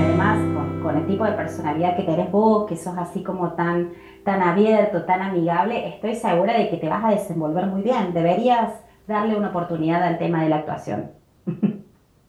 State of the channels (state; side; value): identical; both; correlation 1.00